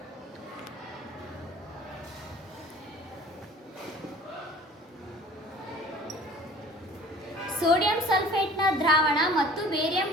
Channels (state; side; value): normal; both; correlation 0.47